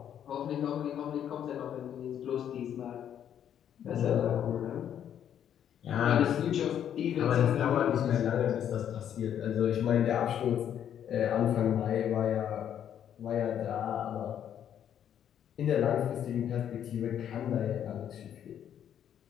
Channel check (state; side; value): quieter; right; 9.7 dB